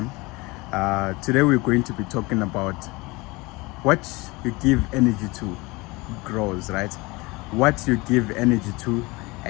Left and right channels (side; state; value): right; quieter; 23.8 dB